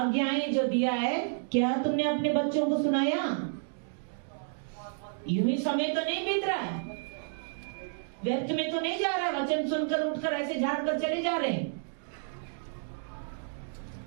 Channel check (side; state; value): left; silent; digital silence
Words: जो दिया है, क्या तुमने अपने बच्चों को सुनाया? यूं ही समय तो नहीं बीत रहा है, व्यर्थ में तो नहीं जा रहा है, वचन सुनकर उठकर ऐसे झाड़ कर चले जा रहे हैं।